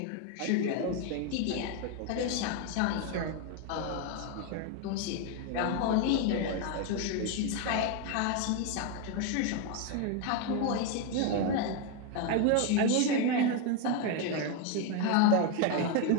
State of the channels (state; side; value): different; both; correlation 0.02